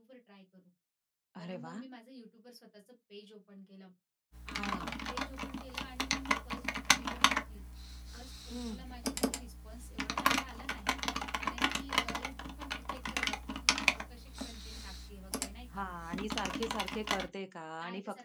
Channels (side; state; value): both; identical; correlation 1.00